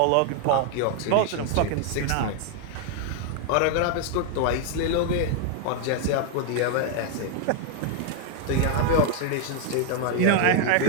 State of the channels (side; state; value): both; different; correlation 0.00